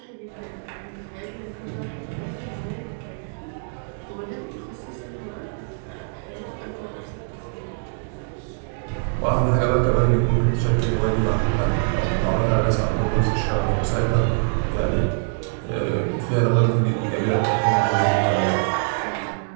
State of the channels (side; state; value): left; silent; 63 dB below the other